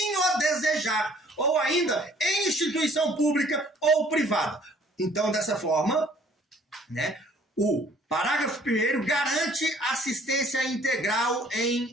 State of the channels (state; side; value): normal; both; correlation 0.57